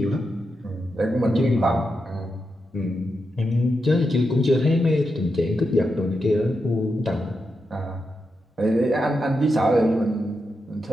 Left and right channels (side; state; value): both; normal; correlation 0.86